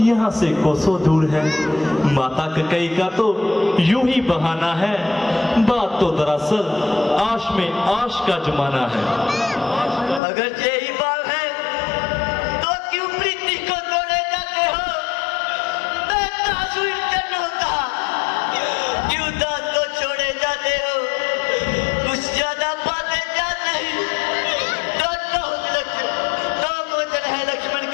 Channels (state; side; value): drops out; right; at 10.2 s